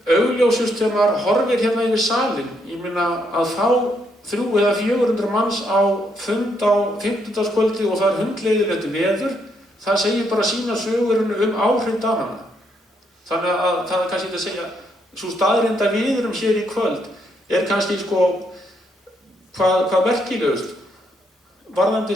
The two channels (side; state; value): both; normal; correlation 0.75